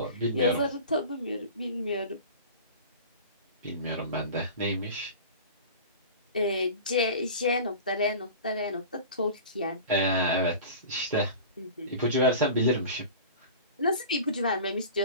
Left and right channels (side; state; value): both; inverted; correlation -0.37